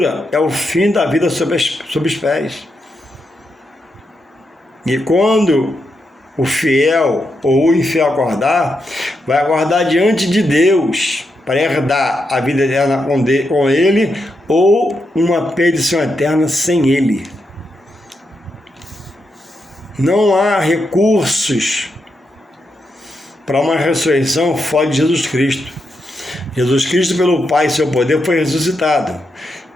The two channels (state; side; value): normal; both; correlation 0.84